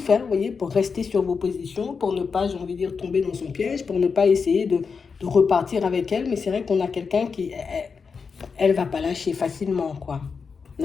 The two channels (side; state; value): right; quieter; 5.4 dB